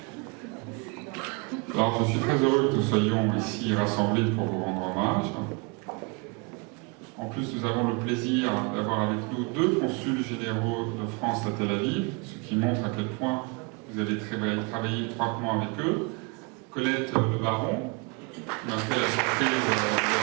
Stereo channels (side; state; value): left; quieter; 29.7 dB